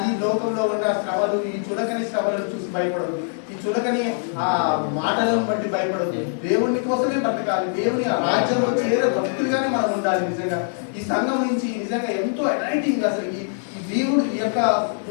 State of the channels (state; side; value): silent; right; digital silence